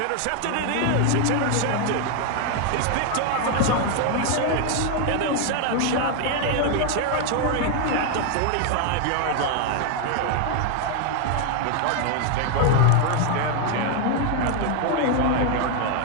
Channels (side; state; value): both; different; correlation 0.01